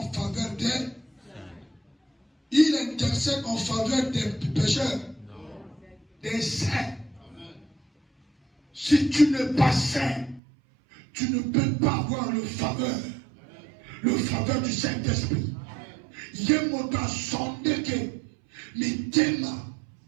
faveur des. Il intercède en faveur des pécheurs, des saints. Si tu n'es pas saint, tu ne peux pas avoir le faveur du Saint-Esprit. Yemoto sondeke mitema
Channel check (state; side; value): drops out; left; at 10.4 s